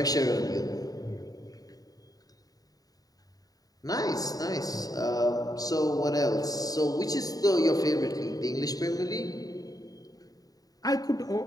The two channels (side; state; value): right; late; 0.18 ms